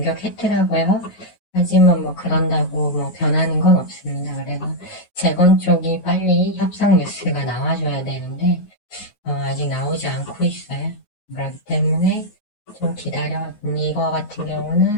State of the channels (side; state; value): right; late; 9.5 ms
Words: 하지만 뭐 그런다고 뭐 변하는 건 없습니다. 그래서 재건 쪽이 빨리 협상 뉴스가 나와줘야 되는데 아직 나오지 않고 있어요. 그렇기 때문에 좀 기다려. 이거 같은